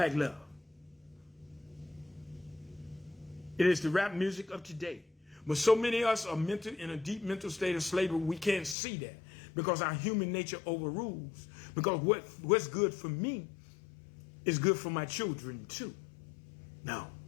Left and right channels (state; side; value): drops out; right; at 8.8 s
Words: love. It is the rap music of today. But so many of us are in a deep mental state of slavery, we can't see that because our human nature overrules. Because what's good for me is good for my children too. No,